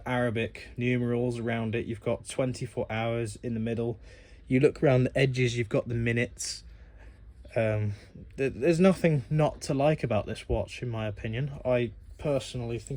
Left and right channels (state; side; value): identical; both; correlation 1.00